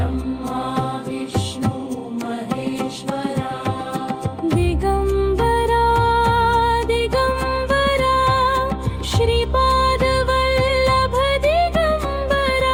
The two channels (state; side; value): identical; both; correlation 1.00